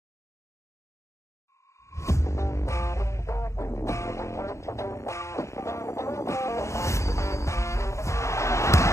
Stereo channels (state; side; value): late; right; 0.14 ms